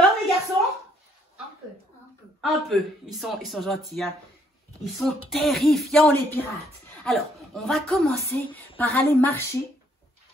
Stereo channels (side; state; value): both; normal; correlation 0.67